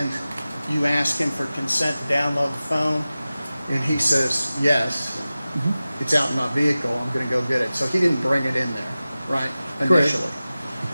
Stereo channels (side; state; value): both; inverted; correlation -0.96